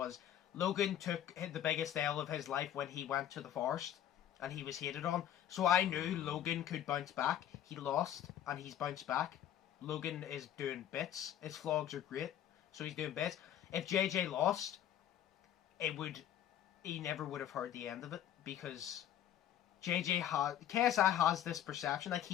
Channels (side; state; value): right; quieter; 10.9 dB